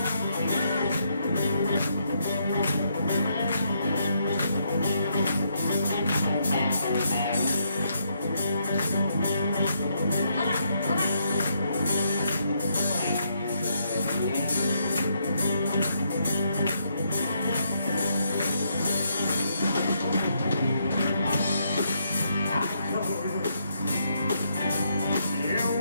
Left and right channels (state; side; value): inverted; both; correlation -0.76